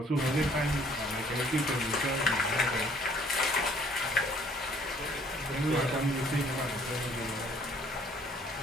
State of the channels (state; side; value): normal; both; correlation 0.59